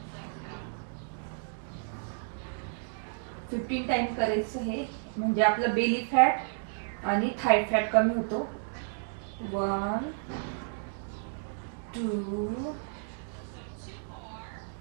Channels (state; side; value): silent; left; digital silence